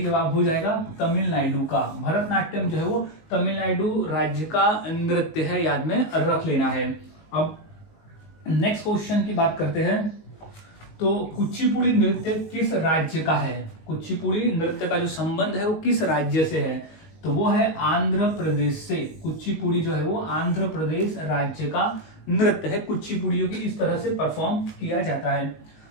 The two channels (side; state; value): right; late; 19 ms